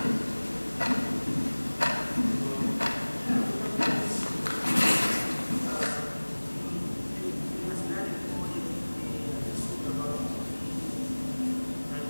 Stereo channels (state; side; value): inverted; both; correlation -1.00